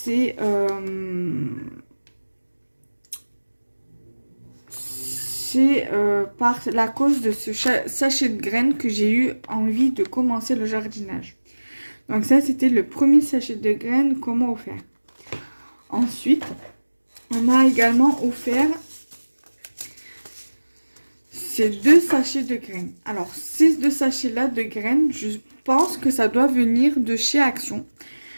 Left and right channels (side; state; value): both; inverted; correlation -1.00